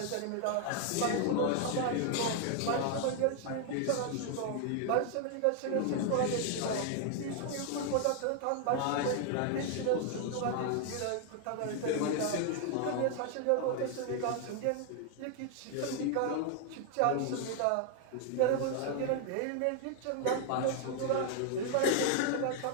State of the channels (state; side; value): different; both; correlation 0.00